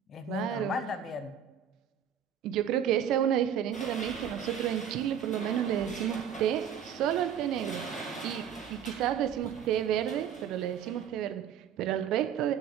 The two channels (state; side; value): quieter; left; 8.5 dB